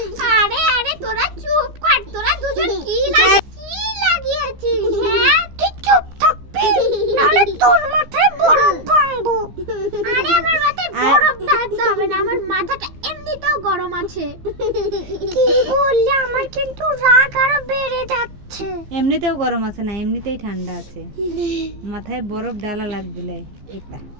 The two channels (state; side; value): late; left; 15 ms